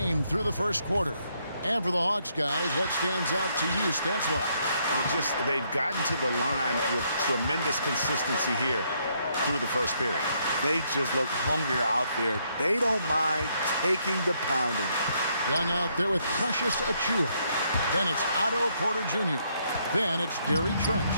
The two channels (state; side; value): inverted; both; correlation -0.73